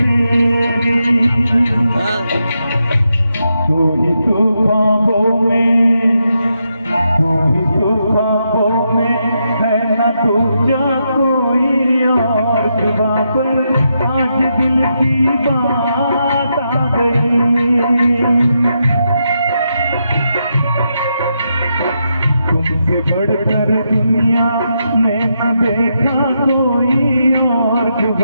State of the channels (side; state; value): both; inverted; correlation -0.83